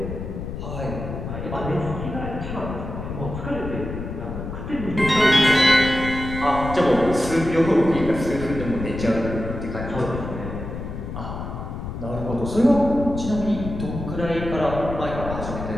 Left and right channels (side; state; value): left; noise; rumble, 7 dB below the sound